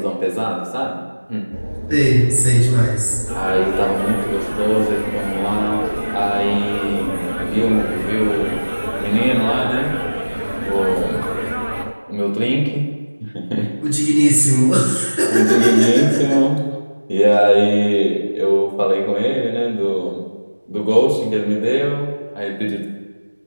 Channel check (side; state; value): both; inverted; correlation -1.00